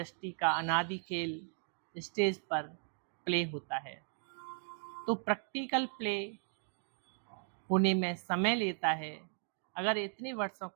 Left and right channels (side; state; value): left; silent; 53 dB below the other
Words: का अनादि खेल स्टेज पर प्ले होता है, तो प्रैक्टिकल प्ले होने में समय लेता है। अगर इतने वर्षों